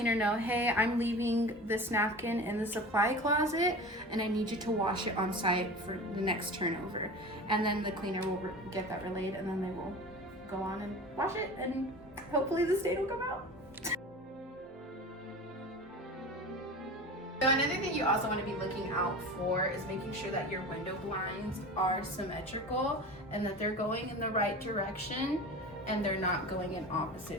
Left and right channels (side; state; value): both; normal; correlation 0.34